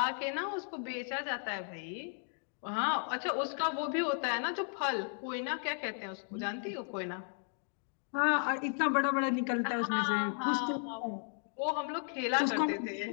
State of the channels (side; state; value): right; silent; 55 dB below the other